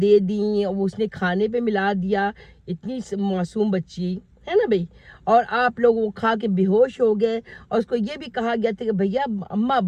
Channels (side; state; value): both; identical; correlation 1.00